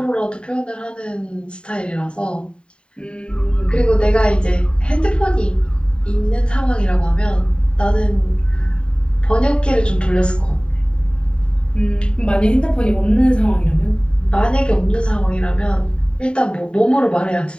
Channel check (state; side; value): late; right; 0.052 ms